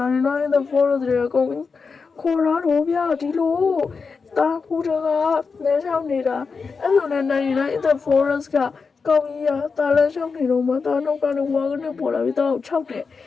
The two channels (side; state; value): right; quieter; 5.0 dB